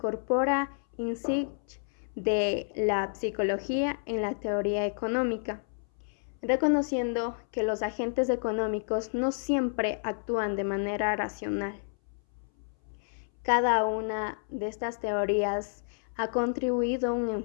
insights de la psicología en la teoría económica, reconociendo que los agentes económicos no siempre actúan de manera racional. Cada una de estas teorías ha contribuido a un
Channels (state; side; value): silent; right; 58 dB below the other